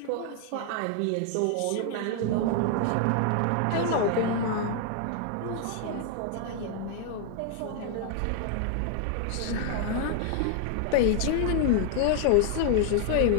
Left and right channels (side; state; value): both; different; correlation 0.00